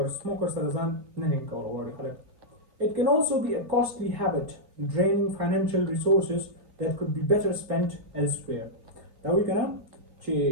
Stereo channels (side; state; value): left; late; 3.9 ms